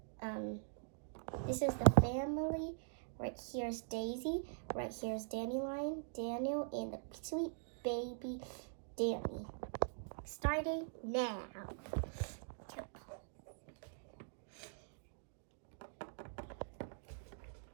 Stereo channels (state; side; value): silent; left; digital silence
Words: This is the family. Right here's Daisy. Right here's Dandelion, Daniel, and the sweet baby Danny. Starting now.